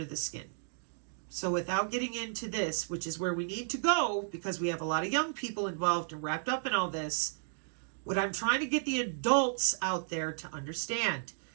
the skin. So without getting into this, which is where we need to go because we have a lot of young people involved and wrapped up in all this, what I'm trying to get the adults out there to understand,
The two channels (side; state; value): left; silent; digital silence